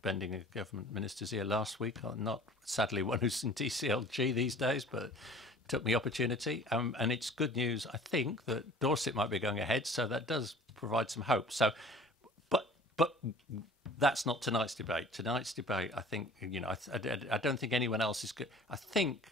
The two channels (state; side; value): normal; both; correlation 0.47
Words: a government minister's ear last week, not sadly one who's in DCLG these days, but took the opportunity. And it's good news, I think, that Dorset might be going ahead, so that does provide some hope. So, but that's not tonight's debate. Tonight's debate, I think, I don't think anyone else is good. I think